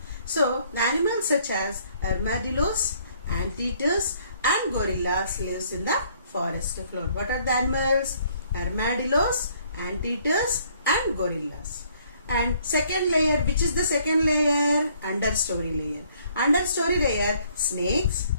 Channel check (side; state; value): both; inverted; correlation -0.63